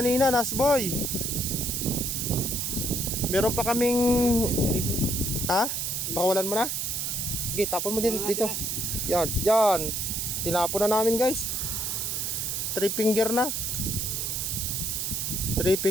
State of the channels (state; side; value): noise; right; hiss, 1 dB below the sound